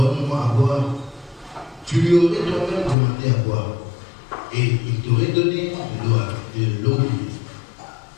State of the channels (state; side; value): drops out; right; at 3.0 s